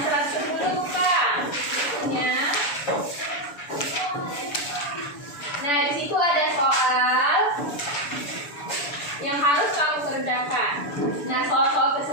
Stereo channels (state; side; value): late; right; 6.9 ms